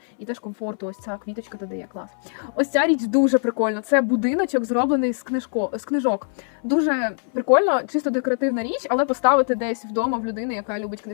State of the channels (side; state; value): right; silent; 63 dB below the other